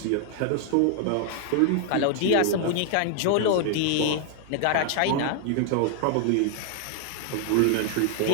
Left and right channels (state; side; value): different; both; correlation 0.00